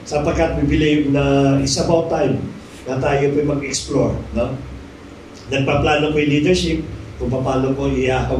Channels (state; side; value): identical; both; correlation 1.00